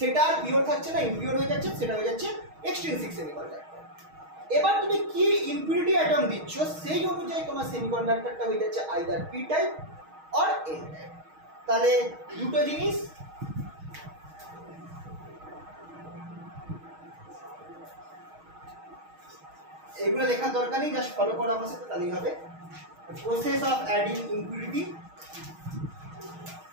আর পিওর থাকছে না, ইম্পিওর হয়ে যাচ্ছে, সেটা হয়ে যাচ্ছে এক্সট্রিনসিক সেমিকন্ডাক্টর। এবার তুমি কি ইম্পিউরিটি অ্যাটম দিচ্ছ, সেই অনুযায়ী তোমার সেমিকন্ডাক্টরটা হয়ে যাচ্ছে either P type or N type. তাহলে দুটো জিনিস, এগুলো লেখার দরকার নেই, জাস্ট ফলো করো আমার সাথে, তাহলেই হবে। Process of adding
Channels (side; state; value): left; late; 6.4 ms